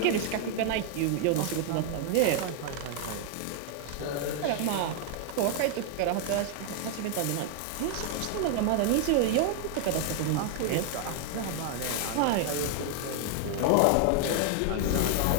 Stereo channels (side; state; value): both; different; correlation 0.00